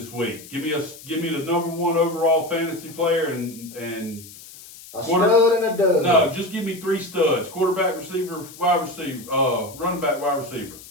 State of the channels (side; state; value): left; noise; hiss, 18 dB below the sound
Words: week. Give me the number one overall fantasy player and A stud and a dud. no, just give me 3 studs: quarterback, receiver, wide receiver, running back, wide receiver.